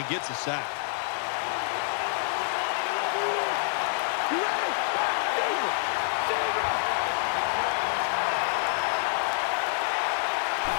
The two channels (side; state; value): right; silent; digital silence